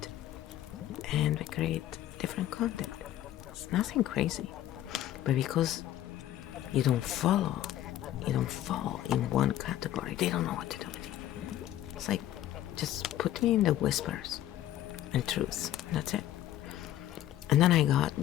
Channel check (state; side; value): quieter; right; 12.8 dB